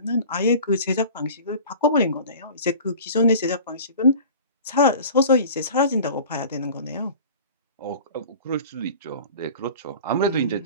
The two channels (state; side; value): inverted; both; correlation -0.40